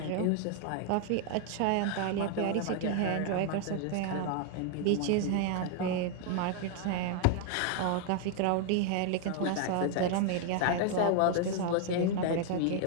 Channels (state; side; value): different; both; correlation 0.00